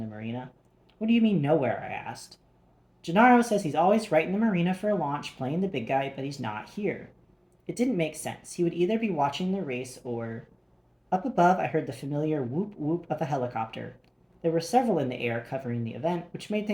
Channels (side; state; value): both; identical; correlation 1.00